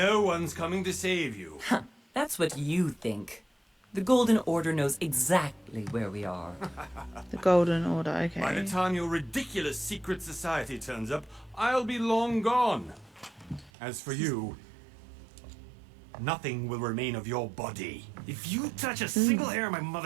one's coming to save you. That's what you think. The Golden Order knows exactly where we are. The Golden Order. Okay. By the time your ridiculous secret society turns up, I'll be long gone. As for you, nothing will remain of your body. If you touch a single hair on my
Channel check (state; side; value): drops out; left; at 13.7 s